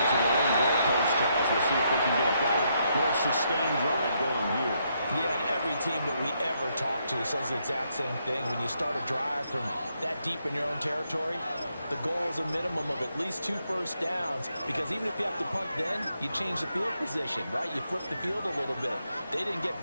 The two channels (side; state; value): both; inverted; correlation -0.77